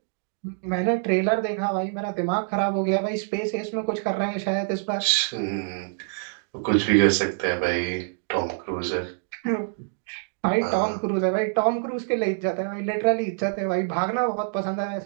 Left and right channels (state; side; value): silent; left; digital silence